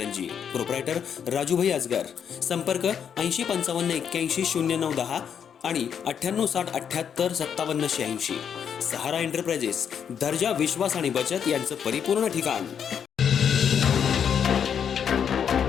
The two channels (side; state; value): right; quieter; 7.9 dB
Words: Proprietor Rajubhai Ajgar. संपर्क 8055810910 आणि 9860785786. सहारा एंटरप्राइजेस, दर्जा, विश्वास आणि बचत यांचं परिपूर्ण ठिकाण.